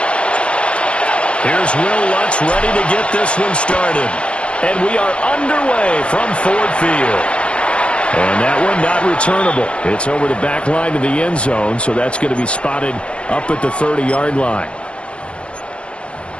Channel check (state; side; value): late; right; 0.058 ms